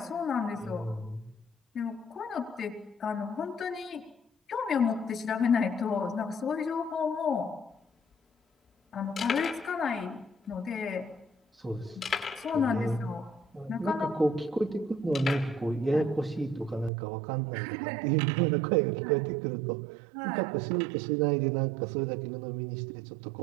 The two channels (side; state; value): left; drops out; at 16.9 s